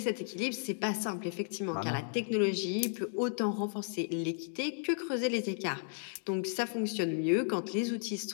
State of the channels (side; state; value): right; silent; digital silence